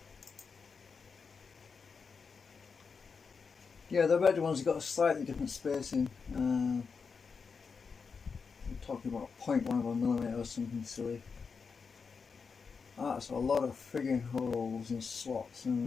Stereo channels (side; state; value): right; quieter; 5.4 dB